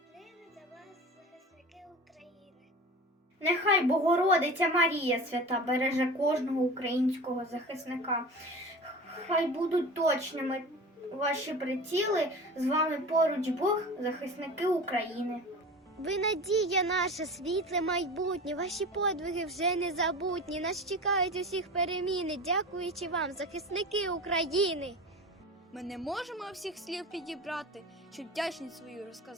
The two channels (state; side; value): normal; both; correlation 0.34